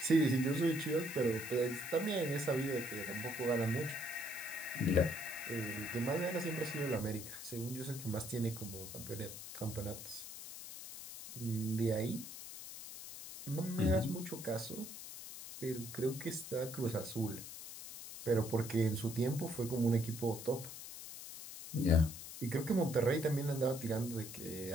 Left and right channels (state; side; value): noise; left; hiss, 11 dB below the sound